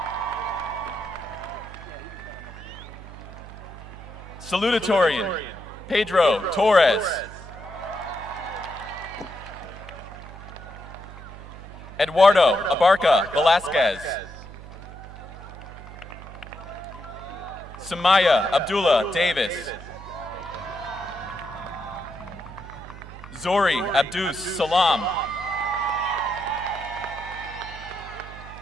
Salutatorian, Pedro Torres. Eduardo Abarca Velasquez. Samaya Abdullah Davis. Zori Abdus Salam.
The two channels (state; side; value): noise; right; hum, 14 dB below the sound